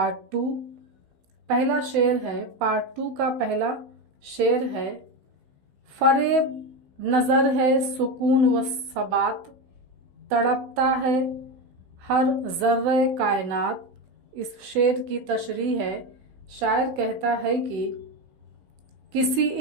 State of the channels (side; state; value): left; late; 16 ms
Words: 2। पहला शेर है, पार्ट 2 का पहला शेर है। फरेब नज़र है सुकून व सबात, तड़पता है हर ज़र्रे कायनात। इस शेर की तशरीह है। शायर कहता है कि किसी